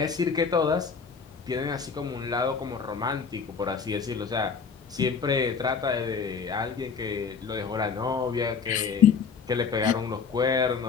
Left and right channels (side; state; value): right; quieter; 5.8 dB